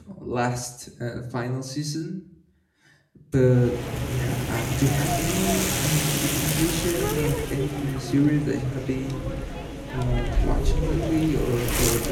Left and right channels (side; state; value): both; identical; correlation 1.00